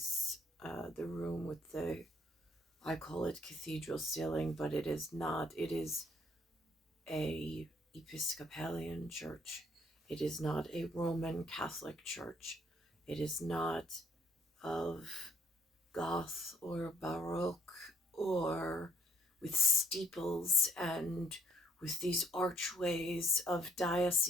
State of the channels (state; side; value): normal; both; correlation 0.66